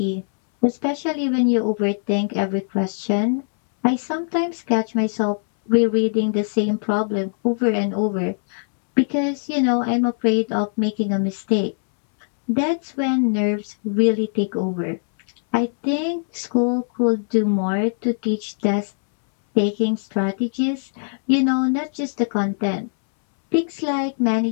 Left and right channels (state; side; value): silent; right; 65 dB below the other